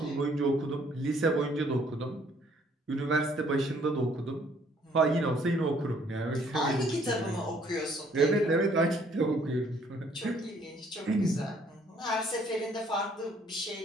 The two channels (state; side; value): normal; both; correlation 0.63